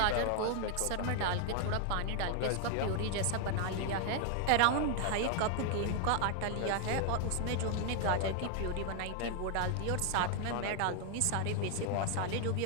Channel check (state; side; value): different; both; correlation 0.00